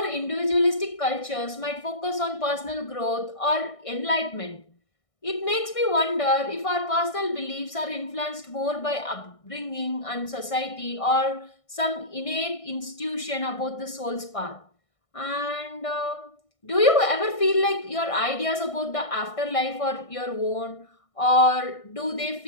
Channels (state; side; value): late; right; 1.6 ms